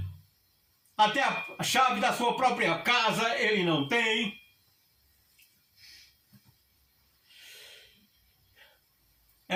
Até a chave da sua própria casa ele não tem.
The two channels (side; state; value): both; identical; correlation 1.00